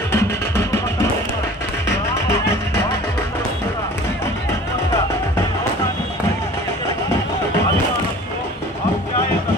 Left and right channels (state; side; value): normal; both; correlation 0.45